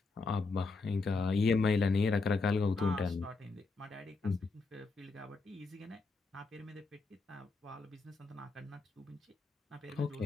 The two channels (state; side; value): quieter; right; 4.0 dB